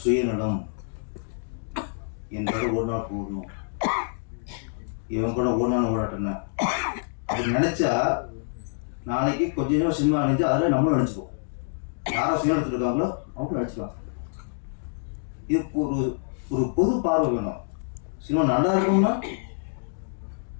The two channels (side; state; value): right; silent; digital silence